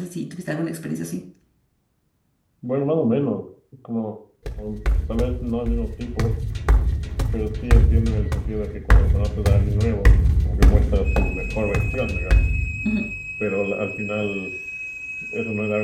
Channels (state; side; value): identical; both; correlation 1.00